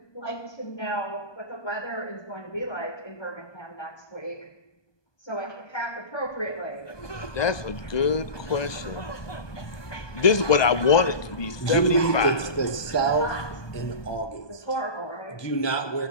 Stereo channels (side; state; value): right; late; 1.2 ms